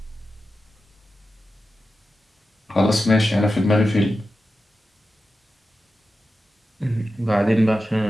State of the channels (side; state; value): both; normal; correlation 0.92